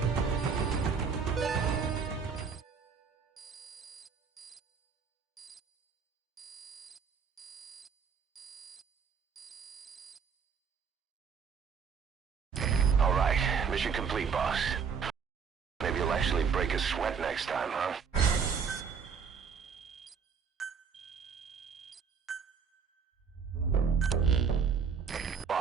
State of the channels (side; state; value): left; quieter; 6.2 dB